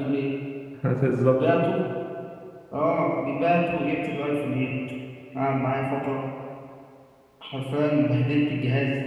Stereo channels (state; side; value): identical; both; correlation 1.00